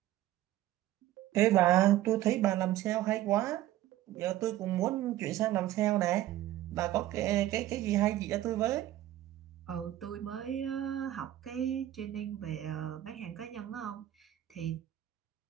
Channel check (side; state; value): left; quieter; 14.0 dB